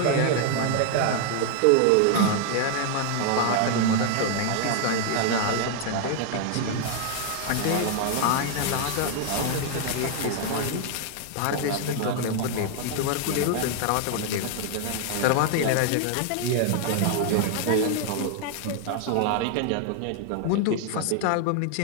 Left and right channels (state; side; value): different; both; correlation 0.00